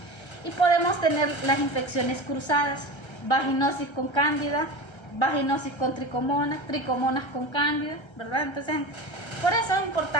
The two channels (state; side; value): late; right; 1.3 ms